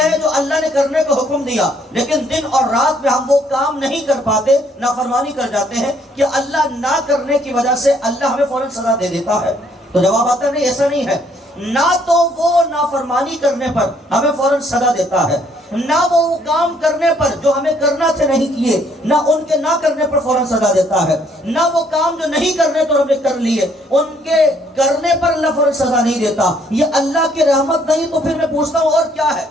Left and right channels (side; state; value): both; normal; correlation 0.66